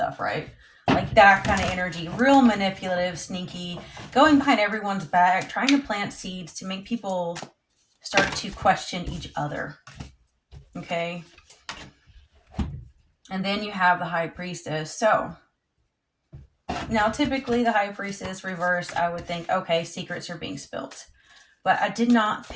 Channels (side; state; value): both; identical; correlation 1.00